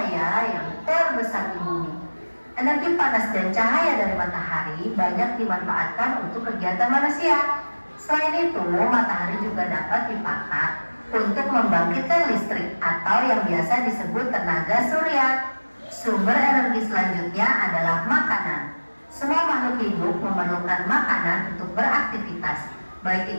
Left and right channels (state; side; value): inverted; both; correlation -1.00